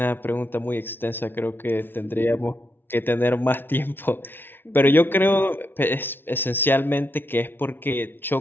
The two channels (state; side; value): late; right; 0.10 ms